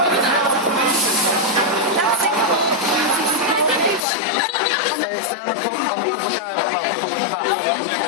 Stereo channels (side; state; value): right; drops out; at 4.0 s